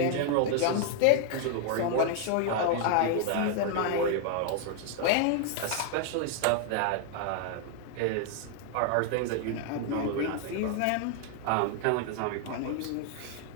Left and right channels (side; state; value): both; different; correlation 0.00